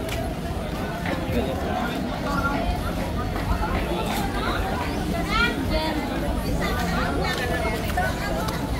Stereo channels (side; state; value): both; identical; correlation 1.00